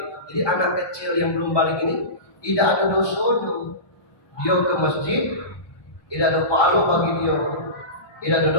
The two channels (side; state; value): right; late; 1.2 ms